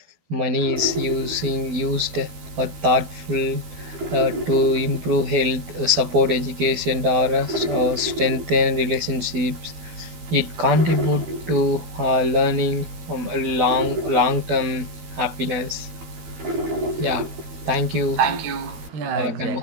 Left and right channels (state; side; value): late; left; 13 ms